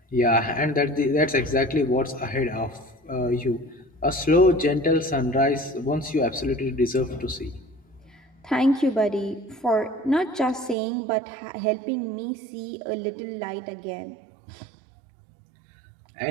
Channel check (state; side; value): drops out; left; at 10.8 s